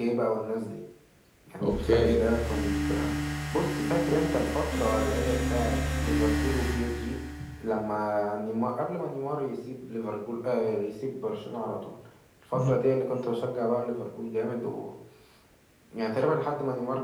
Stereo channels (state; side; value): identical; both; correlation 1.00